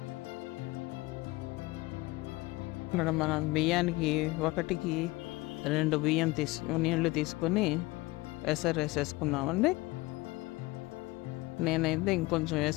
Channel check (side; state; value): right; quieter; 21.6 dB